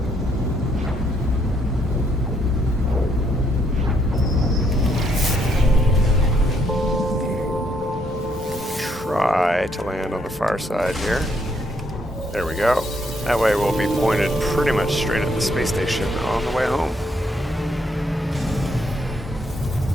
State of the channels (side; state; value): both; normal; correlation 0.73